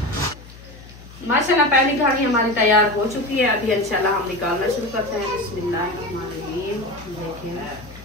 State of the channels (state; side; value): noise; left; hum, 19 dB below the sound